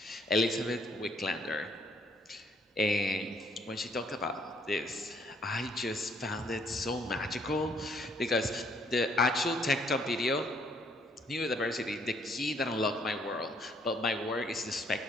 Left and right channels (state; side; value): normal; both; correlation 0.66